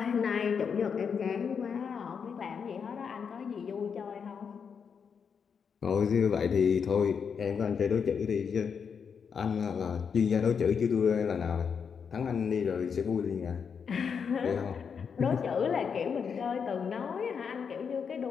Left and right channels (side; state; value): right; quieter; 6.5 dB